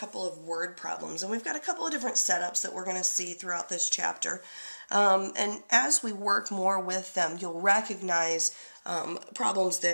of word problems, and we've got a couple of different setups that we're going to see throughout this chapter. And as we work more with them, you'll recognize problems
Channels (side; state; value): both; inverted; correlation -1.00